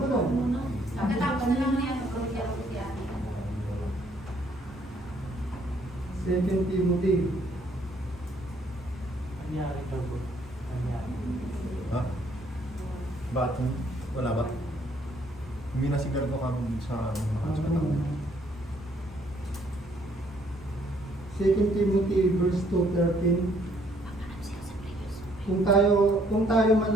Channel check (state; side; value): normal; both; correlation 0.66